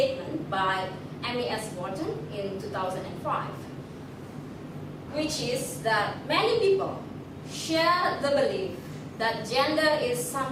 by M.E.S. Wharton in 2005, which is that many people share the belief that gender is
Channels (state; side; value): identical; both; correlation 1.00